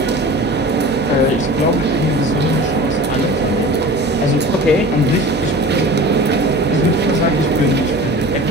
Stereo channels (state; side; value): normal; both; correlation 0.38